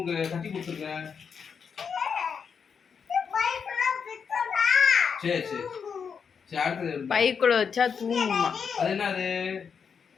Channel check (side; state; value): right; quieter; 6.4 dB